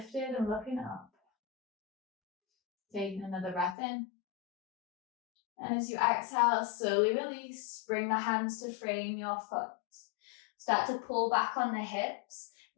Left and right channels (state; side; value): drops out; right; at 3.8 s